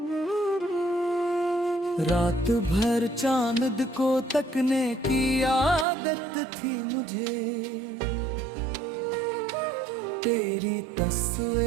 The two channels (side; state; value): left; drops out; at 5.9 s